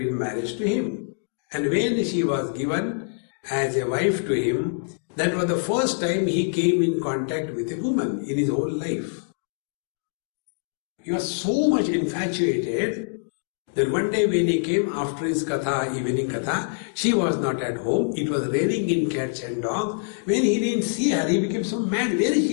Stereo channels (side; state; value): right; silent; digital silence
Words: marriage to him. And when she was given as a wife to him, that was the first time he came in contact with a woman in his whole life. He was so much infatuated that one day when he came after his katha, evening katha, she was not at home. It was raining in cats and dogs. When he didn't see her, he became so mad. Where